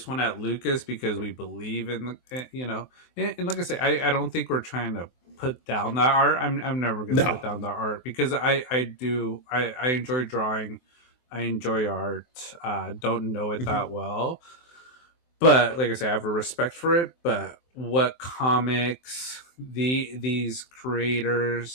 one at Lucas because we believe in and like I say, I don't think we're trying to put down that art. I'm never gonna No. put down the art because I enjoy drawing. I enjoy art. Don't know it Mhm. that well, but like I say, I have a respect for it. But what comics these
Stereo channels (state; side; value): late; right; 23 ms